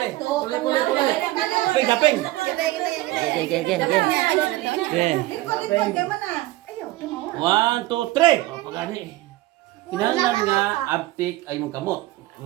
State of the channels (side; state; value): left; quieter; 17.9 dB